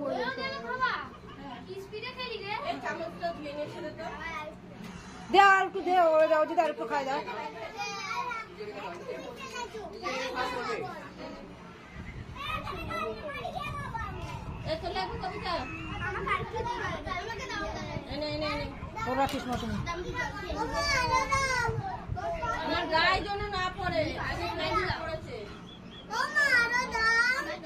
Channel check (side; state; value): both; identical; correlation 1.00